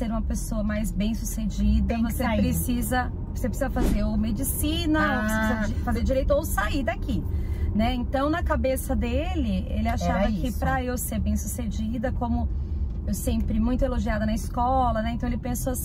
uma pessoa mais bem-sucedida, você precisa fazer ou medicina, ou você precisa fazer direito, ou sair daqui, né? Então, na cabeça dele, ele achava que para eu ser bem-sucedida, como eu sempre muito elogiada na escola, né? Então ele pensou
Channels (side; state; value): both; identical; correlation 1.00